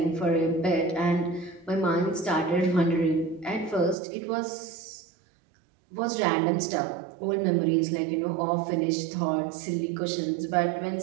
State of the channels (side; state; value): left; drops out; at 4.0 s